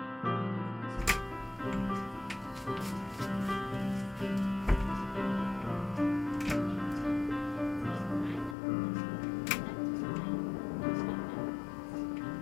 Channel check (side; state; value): right; drops out; at 8.6 s